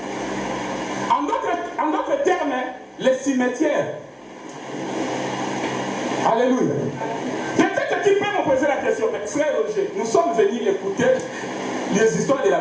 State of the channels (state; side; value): identical; both; correlation 1.00